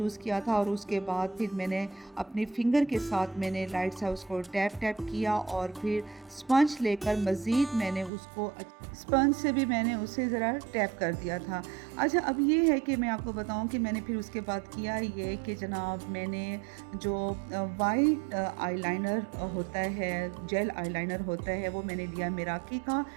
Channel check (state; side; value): drops out; left; at 8.1 s